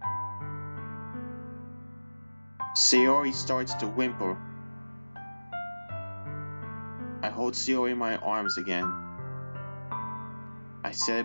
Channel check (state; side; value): inverted; both; correlation -1.00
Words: Sayori starts to whimper. I hold Sayori in my arms again. I